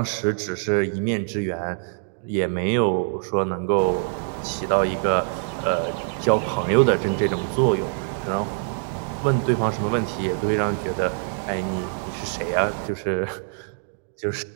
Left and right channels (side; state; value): left; silent; 62 dB below the other